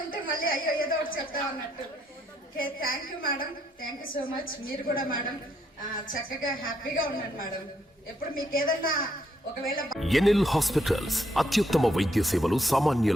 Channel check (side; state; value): both; normal; correlation 0.74